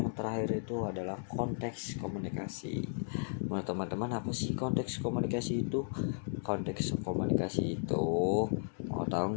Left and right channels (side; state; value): right; silent; 55 dB below the other